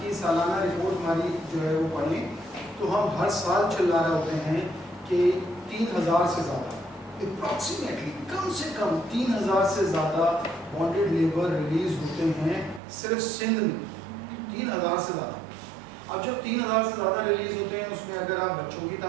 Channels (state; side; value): drops out; left; at 12.8 s